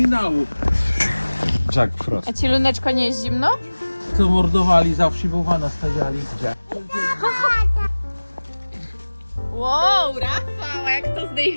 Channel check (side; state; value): both; inverted; correlation -1.00